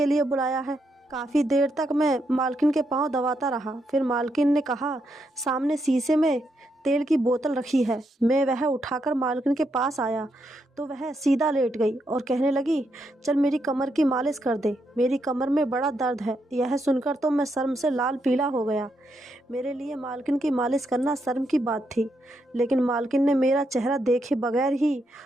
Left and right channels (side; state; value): both; normal; correlation 0.80